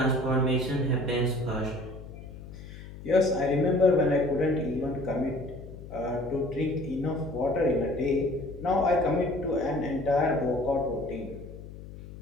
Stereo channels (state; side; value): noise; left; hum, 14 dB below the sound